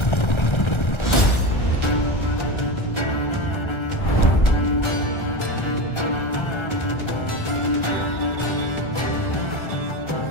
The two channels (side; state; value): right; late; 1.3 ms